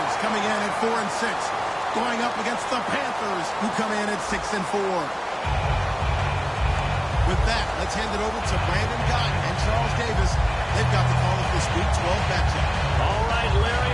coming in at 4-6, going up against the Panthers, who come in at 6-4. With that, let's hand it over to Brandon Gotton and Charles Davis. They've got the call of this Week 12 matchup. All right,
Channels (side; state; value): both; identical; correlation 1.00